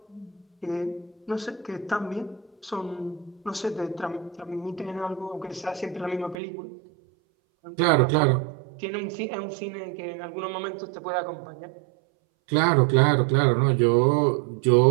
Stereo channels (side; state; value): left; drops out; at 6.4 s